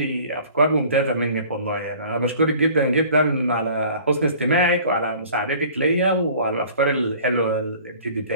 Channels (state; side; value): inverted; both; correlation -0.48